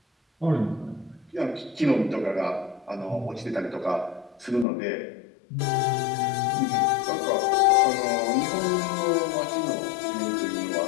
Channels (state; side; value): drops out; right; at 4.7 s